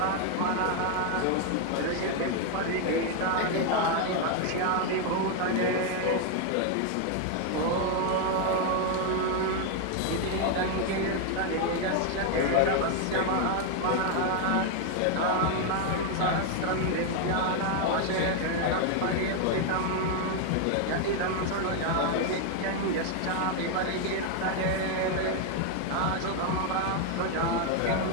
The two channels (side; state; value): both; different; correlation 0.00